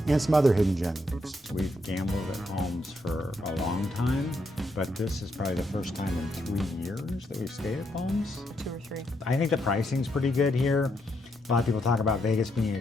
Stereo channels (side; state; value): both; normal; correlation 0.78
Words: and some other hidden gems. We've gambled at Palms for a long time, but this is probably the first time in 3 years that we've stayed at Palms. 2 or 3. I think the pricing's pretty good here. A lot of people talk about Vegas being